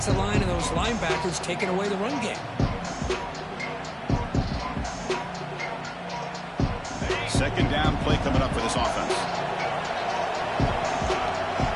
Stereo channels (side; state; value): both; identical; correlation 1.00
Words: line and those linebackers taking away the run game. Second down play coming up for this offense.